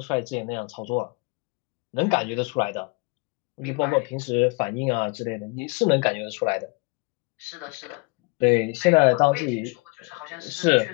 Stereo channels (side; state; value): right; quieter; 29.1 dB